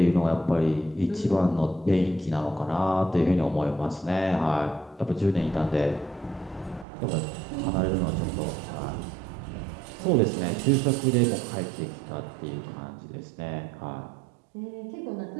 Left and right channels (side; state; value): left; drops out; at 6.9 s